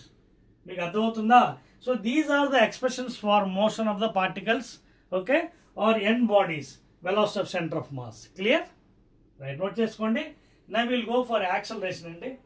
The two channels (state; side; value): identical; both; correlation 1.00